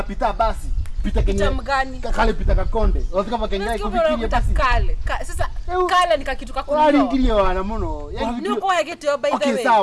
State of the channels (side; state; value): both; identical; correlation 1.00